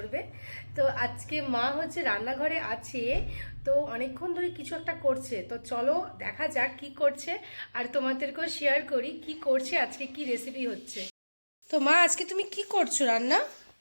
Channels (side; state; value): both; inverted; correlation -1.00